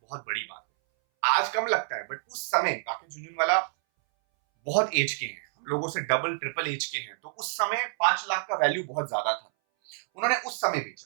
बड़ी बात है। आज कम लगता है, बट उस समय राकेश झुनझुनवाला बहुत एज के हैं, हम लोगों से डबल ट्रिपल एज के हैं, तो उस समय 5 लाख का वैल्यू बहुत ज्यादा था। उन्होंने उस समय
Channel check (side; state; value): left; silent; 59 dB below the other